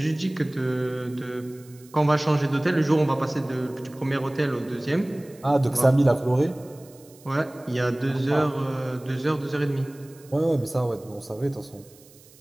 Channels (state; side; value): noise; right; hiss, 25 dB below the sound